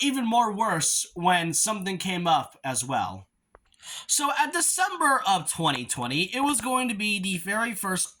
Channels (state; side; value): identical; both; correlation 1.00